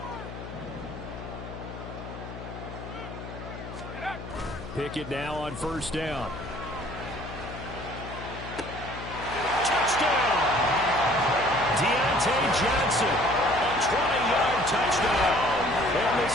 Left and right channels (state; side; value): noise; left; hum, 11 dB below the sound